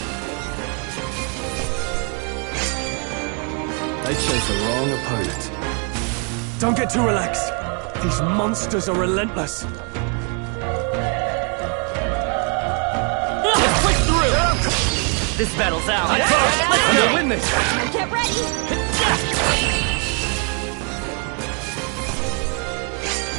They chose the wrong opponent. Don't get too relaxed. These monsters are relentless. Let's push through! This battle's ours. Let's We'll win this! Get ready!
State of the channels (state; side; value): quieter; left; 38.5 dB